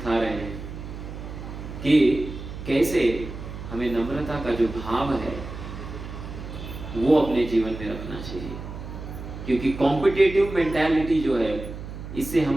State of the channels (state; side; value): noise; right; hum, 10 dB below the sound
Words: रहे हैं कि कैसे हमें नम्रता का जो भाव है वो अपने जीवन में रखना चाहिए, क्योंकि कॉम्पिटिटिव मेंटालिटी जो है इससे